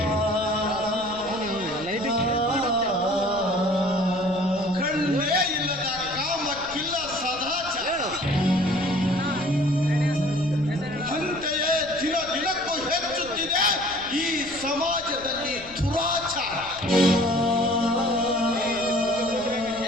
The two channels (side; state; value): left; noise; rumble, 19 dB below the sound